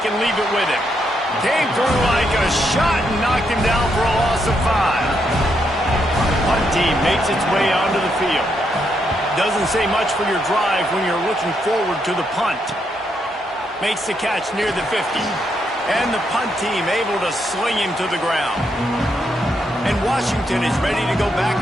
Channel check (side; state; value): both; normal; correlation 0.78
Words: and leave it with him. Came through like a shot and knocked him down for a loss of 5. Punt team makes its way onto the field. Doesn't say much for your drive when you're looking forward to the punt. Makes the catch near the 50. And the punt team able to sling him to the ground. And Washington is ready to go back